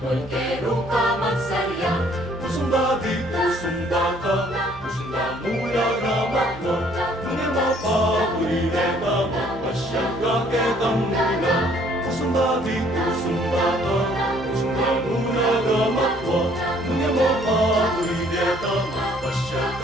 Polkero ka magsarya, Pusong babi, pusong bata, pusong damula ramatwa, nungi mapaburireta, mapasyagaketang mula. Pusong babi, pusong bata, pusong damula ramatwa, nungi mapaburireta,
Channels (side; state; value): both; normal; correlation 0.61